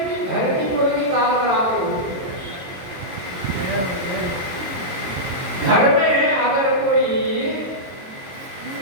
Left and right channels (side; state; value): left; late; 22 ms